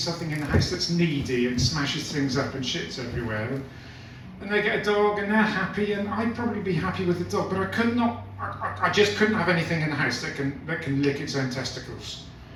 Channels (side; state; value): both; identical; correlation 1.00